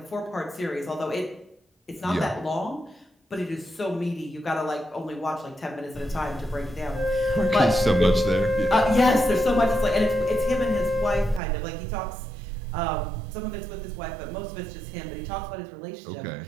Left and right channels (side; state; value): left; drops out; at 11.4 s